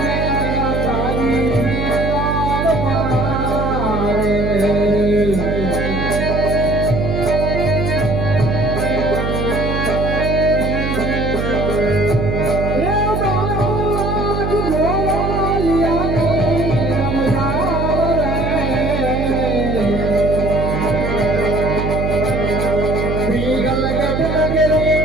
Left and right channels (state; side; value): noise; right; hum, 1 dB below the sound